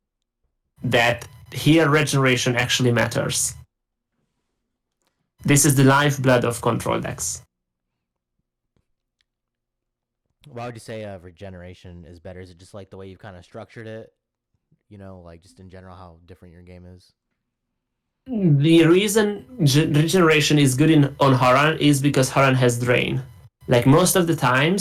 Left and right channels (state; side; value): identical; both; correlation 1.00